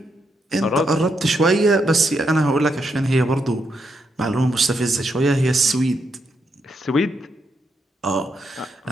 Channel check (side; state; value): both; normal; correlation 0.80